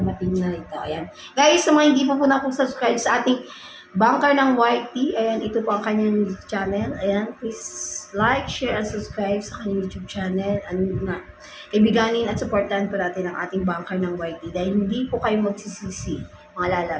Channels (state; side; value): identical; both; correlation 1.00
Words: na ito. Ayan. Guys, sa mga hindi po na po subscribe sa ating bunker ng YT, ayan, ito po ang kanyang channel. Ayan, please like, share, and subscribe sa kanyang YouTube channel. Ano nga, ibiganin at supportahan po natin ang ating bunker ng YT dahil hindi po kayo magsisisi, mga